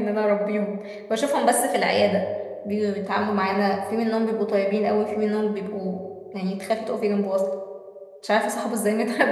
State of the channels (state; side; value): identical; both; correlation 1.00